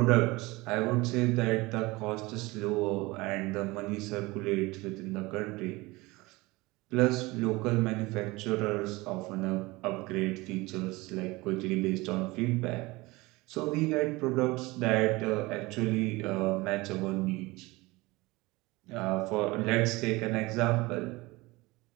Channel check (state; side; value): quieter; left; 22.2 dB